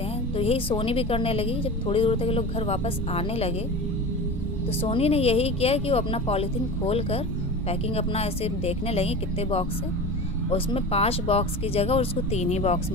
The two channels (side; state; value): both; normal; correlation 0.31